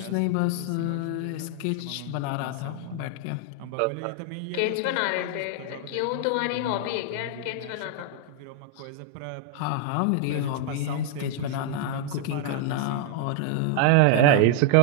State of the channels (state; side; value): different; both; correlation 0.00